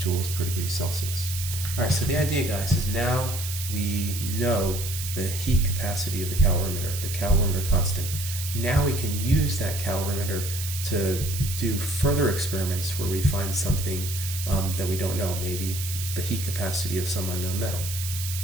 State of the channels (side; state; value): right; noise; hiss, 7 dB below the sound